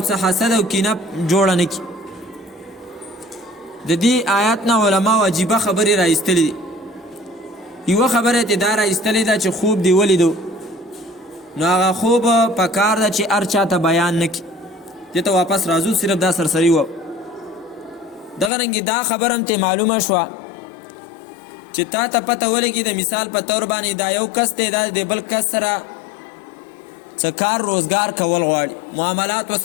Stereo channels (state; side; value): drops out; right; at 18.5 s